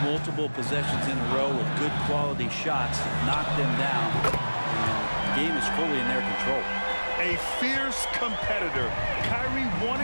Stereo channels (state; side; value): inverted; both; correlation -1.00